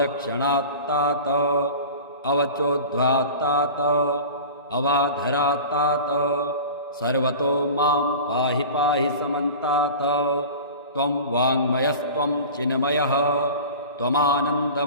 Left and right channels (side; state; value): both; inverted; correlation -0.36